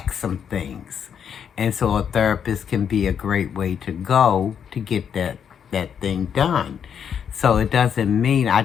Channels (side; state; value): right; quieter; 7.9 dB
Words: some things. And so a therapist can be a great way to go to get that thing done. So it doesn't mean, I